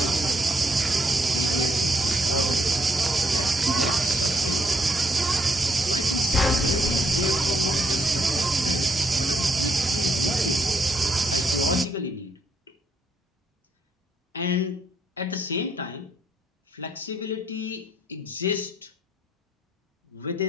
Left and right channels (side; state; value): both; normal; correlation 0.73